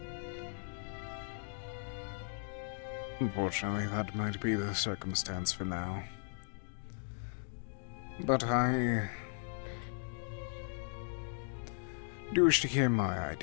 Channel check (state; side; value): silent; right; digital silence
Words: Unfortunately, that might be the circumstance for now. But I Do you wish to hear my